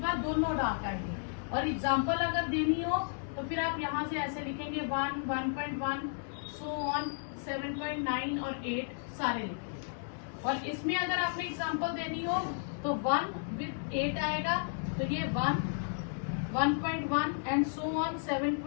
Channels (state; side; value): silent; right; digital silence